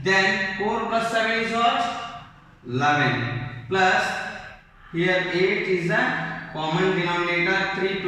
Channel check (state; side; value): identical; both; correlation 1.00